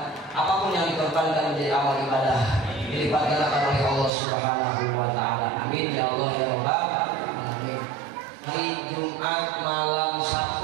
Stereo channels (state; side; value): drops out; left; at 4.1 s